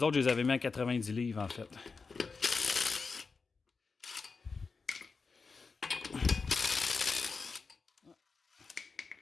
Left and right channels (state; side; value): quieter; right; 4.6 dB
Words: autres, je les avais mis à 90 livres, en fait.